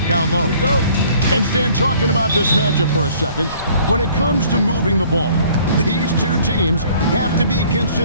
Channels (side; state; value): both; inverted; correlation -0.56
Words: down low. Here we go. And Stan, talking about this matchup for a second, when it comes to moving the ball, these two teams have to be